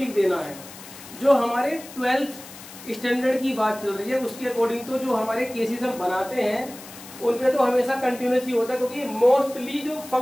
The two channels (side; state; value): left; noise; hiss, 16 dB below the sound